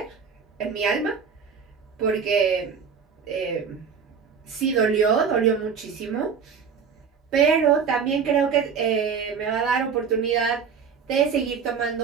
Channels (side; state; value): left; quieter; 6.3 dB